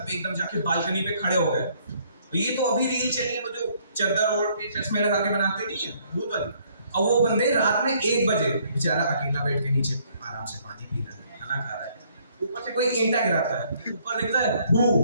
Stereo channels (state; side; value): inverted; both; correlation -0.65